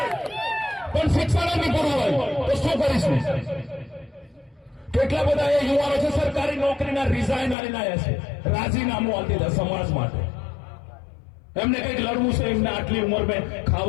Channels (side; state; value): right; drops out; at 7.6 s